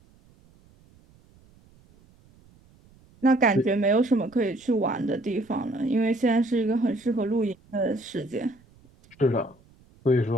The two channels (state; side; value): noise; right; rumble, 29 dB below the sound